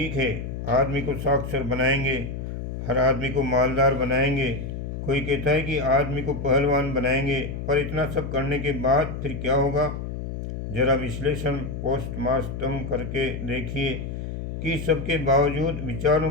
है, आदमी को साक्षर बनाएंगे, हर आदमी को मालदार बनाएंगे। कोई कहता है कि आदमी को पहलवान बनाएंगे, पर इतना सब करने के बाद फिर क्या होगा? जरा विश्लेषण पोस्टमार्टम करके देखिए कि सबके बावजूद विचारों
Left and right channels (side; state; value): left; noise; hum, 6 dB below the sound